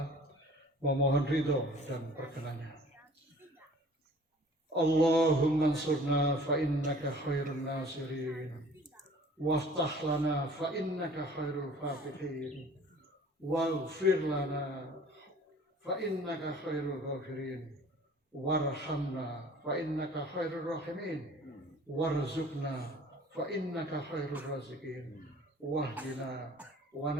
memohon ridho dan perkenannya. Allahumma ansurna fa innaka khairun nasirin, waftah lana fa innaka khairul fatihin, waghfir lana fa innaka khairul ghafirin, warhamna fa innaka khairur rahimin, warzuqna fa innaka khairur raziqin, wahdina wa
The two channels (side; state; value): both; normal; correlation 0.49